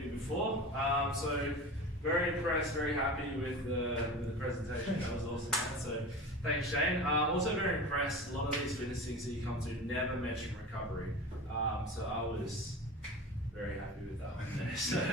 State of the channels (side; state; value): both; normal; correlation 0.32